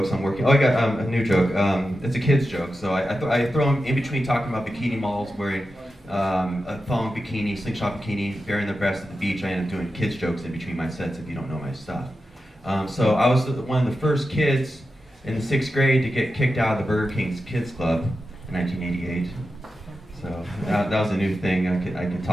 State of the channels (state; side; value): normal; both; correlation 0.91